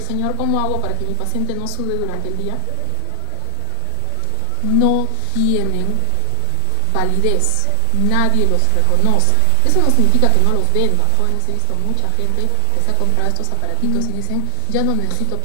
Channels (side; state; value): both; different; correlation 0.00